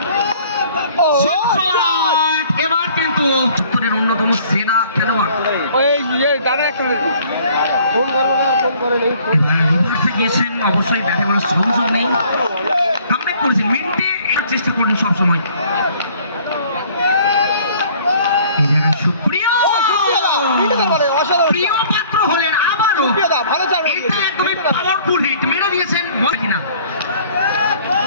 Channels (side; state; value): both; inverted; correlation -0.55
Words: এবার কিন্তু উত্তরের অন্যতম সেরা খেলোয়াড় গিয়েছেন, অবশ্যই ব্যাটে বলার সংযোগ নেই, কামব্যাক করেছেন মিনিটে চেষ্টা করলেন সবসময়। এই জায়গায় সুপ্রিয় প্রিয় পাত্র হলেন আবারও, এটা একদমই পাওয়ারফুল হিট মেরে দিয়েছেন কিনা